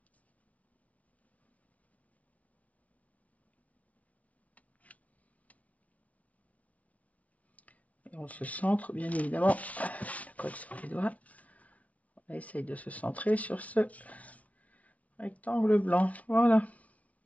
on se centre, bien évidemment. La colle sur les doigts. On essaye de se centrer sur ce rectangle blanc. Voilà.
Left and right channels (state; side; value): late; right; 0.068 ms